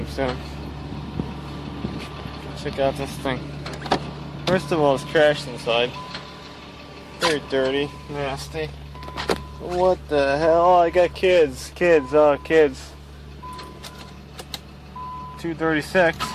soon. Check out this thing. First of all, it's trashed inside. Very dirty, nasty. What the hell? I got kids. Kids. 236.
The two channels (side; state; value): both; identical; correlation 1.00